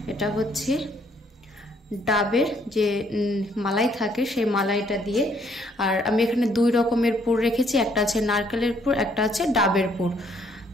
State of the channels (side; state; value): both; normal; correlation 0.67